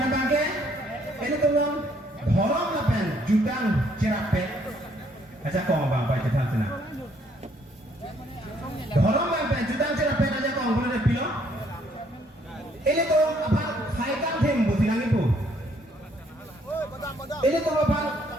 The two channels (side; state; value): both; normal; correlation 0.66